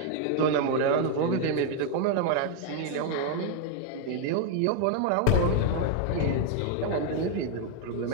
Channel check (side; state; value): both; different; correlation 0.00